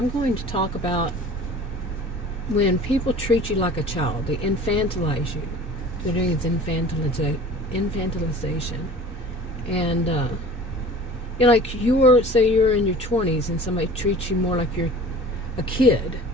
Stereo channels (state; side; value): normal; both; correlation 0.43